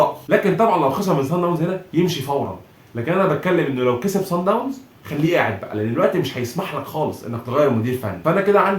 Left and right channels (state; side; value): identical; both; correlation 1.00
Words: لكن طبعا لو خسر من صن داونز هنا يمشي فورا. لكن انا بتكلم انه لو كسب صن داونز خليه قاعد بقى، لان الوقت مش هيسمح لك خالص انك تغير مدير فني. فانا كده